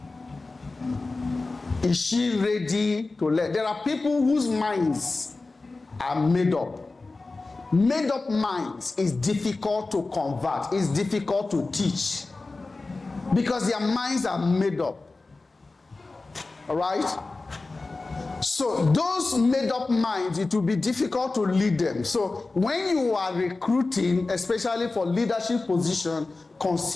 Is she ready to learn? There are people whose minds are made up. Made up minds is difficult to convert. It's difficult to teach. Because their minds are made up. All right? So those made up minds, it will be difficult to lead them. So when you are recruiting, especially for leadership position,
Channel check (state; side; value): quieter; right; 3.5 dB